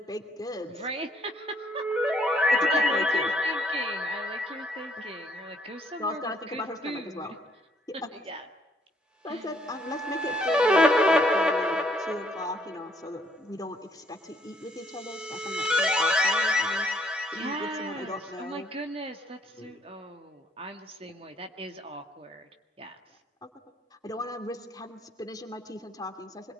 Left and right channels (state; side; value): normal; both; correlation 0.66